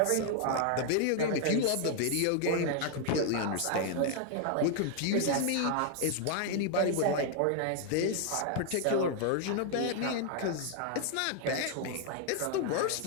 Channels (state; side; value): different; both; correlation 0.00